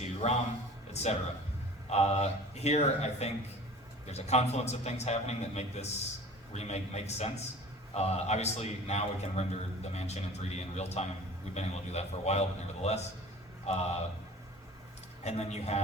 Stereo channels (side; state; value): both; normal; correlation 0.43